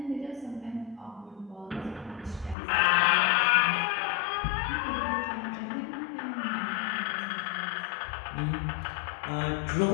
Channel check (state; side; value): drops out; right; at 2.6 s